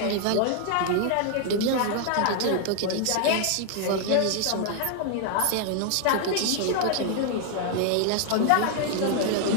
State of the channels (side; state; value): both; different; correlation 0.00